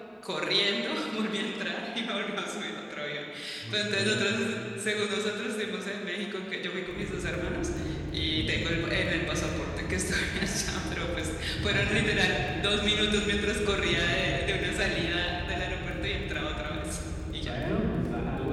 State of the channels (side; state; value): both; identical; correlation 1.00